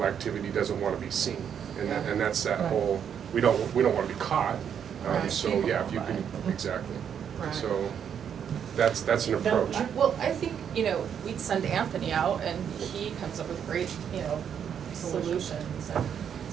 activity doesn't want to be seen, and that's that Right. whole, we don't want to be caught. Right. So yeah, if you can, exactly. Right. So that's an approach. Well, I think, we'd send Anthony out and he comes up with great, solutions and.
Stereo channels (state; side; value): quieter; left; 8.3 dB